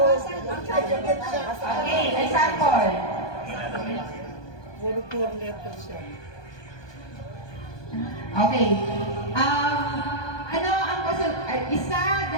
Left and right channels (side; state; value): right; late; 1.2 ms